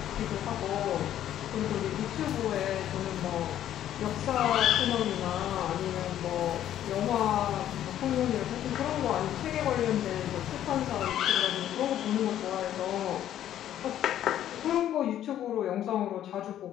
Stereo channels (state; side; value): quieter; right; 11.4 dB